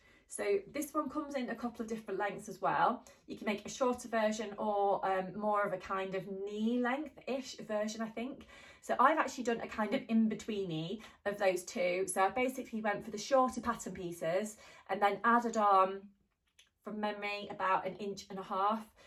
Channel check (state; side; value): identical; both; correlation 1.00